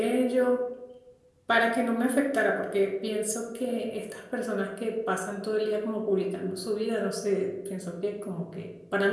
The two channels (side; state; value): both; identical; correlation 1.00